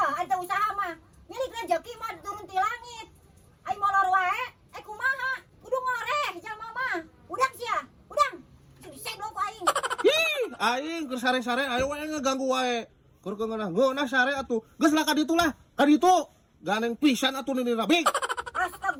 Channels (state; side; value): identical; both; correlation 1.00